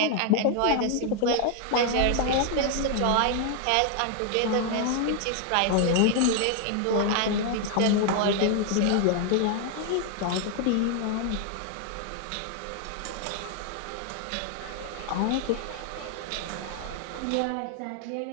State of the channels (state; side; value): different; both; correlation 0.00